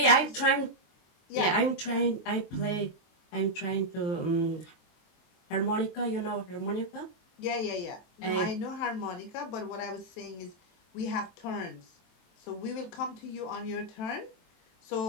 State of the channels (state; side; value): late; right; 23 ms